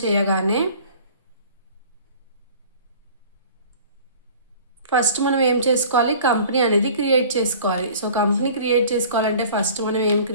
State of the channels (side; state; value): both; inverted; correlation -0.46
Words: చేయగానే ఫస్ట్ మనం ఏం చేసుకోవాలి, కంపెనీ అనేది క్రియేట్ చేసుకోవాలి. సో కంపెనీ క్రియేట్ చేసుకోవాలంటే ఫస్ట్ మనం ఏం